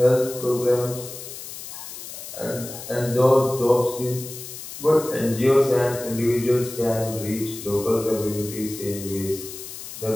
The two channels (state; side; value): noise; left; hiss, 11 dB below the sound